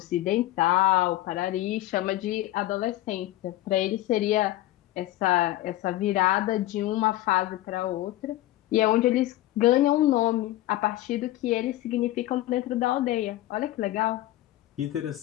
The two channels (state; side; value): quieter; right; 15.8 dB